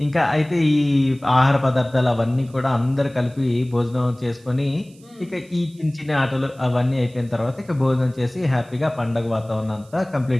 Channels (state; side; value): noise; right; hiss, 28 dB below the sound